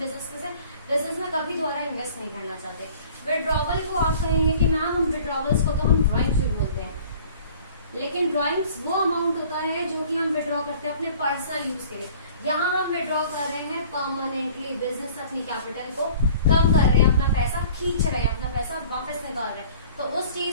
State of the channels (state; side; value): inverted; both; correlation -0.50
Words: में कभी दोबारा इन्वेस्ट नहीं करना चाहते। विड्रॉवल को आप कहेंगे कि मैम हम विड्रॉवल्स को तो हम ड्रॉइंग जरूर बोलते हैं, लेकिन ड्रॉइंग्स वो अमाउंट होता है जो कि हम विड्रॉ करते हैं अपने पर्सनल यूज के लिए। यहाँ हम विड्रॉ कर रहे हैं परमानेंटली, बिजनेस अपनी कैपिटल को कम कर रहे हैं, अपना पैसा खींच रहे हैं, अपना पैसा वापस निकाल रहे हैं, तो उस